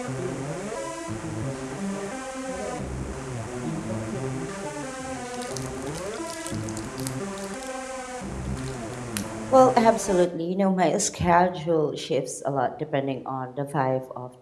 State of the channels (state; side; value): identical; both; correlation 1.00